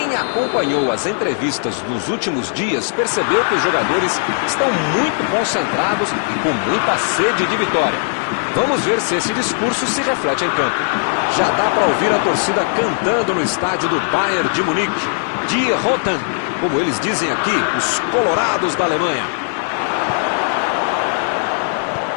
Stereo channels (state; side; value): silent; right; digital silence